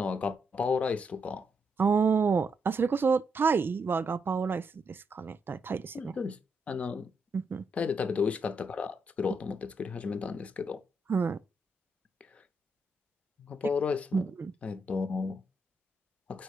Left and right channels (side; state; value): both; normal; correlation 0.79